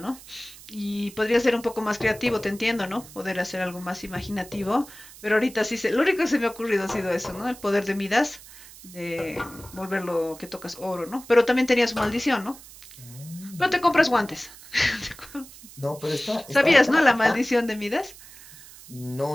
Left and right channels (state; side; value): noise; right; hiss, 19 dB below the sound